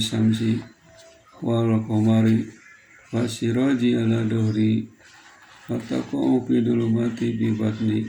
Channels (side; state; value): both; identical; correlation 1.00